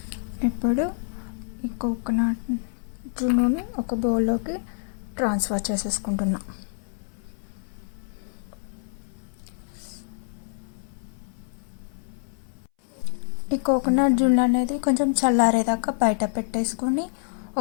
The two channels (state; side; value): silent; right; 61 dB below the other